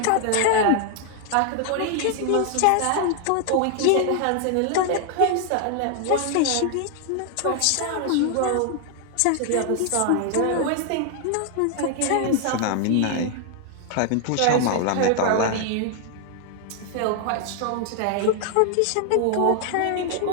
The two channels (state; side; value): different; both; correlation 0.00